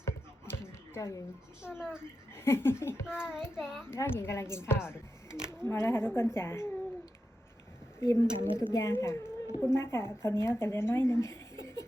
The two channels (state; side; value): normal; both; correlation 0.89